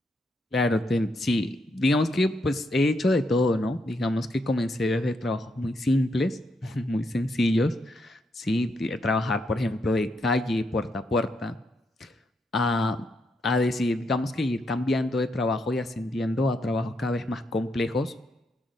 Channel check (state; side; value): normal; both; correlation 0.79